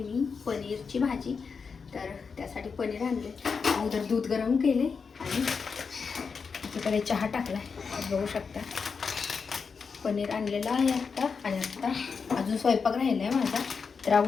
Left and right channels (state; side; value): quieter; right; 5.4 dB